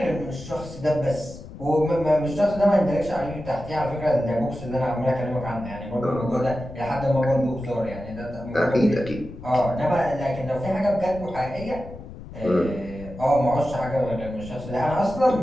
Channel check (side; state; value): left; noise; rumble, 14 dB below the sound